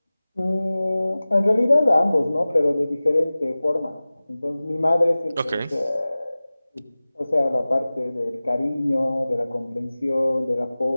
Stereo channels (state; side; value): inverted; both; correlation -0.98